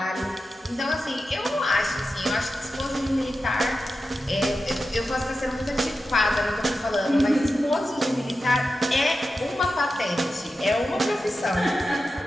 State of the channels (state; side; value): normal; both; correlation 0.92